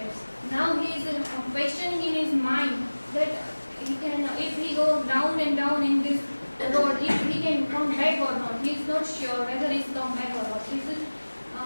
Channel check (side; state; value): both; inverted; correlation -1.00